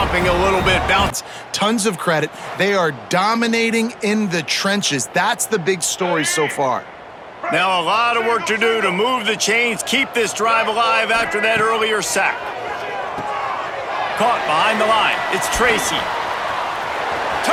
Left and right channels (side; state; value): both; identical; correlation 1.00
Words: a little bit? Bounce. Tons of credit. They are dominating in the trenches. That's the big story so far. Now a lot of work to do to move the chains, keep this drive alive after that earlier sack. Caught behind the line. It's Tracy.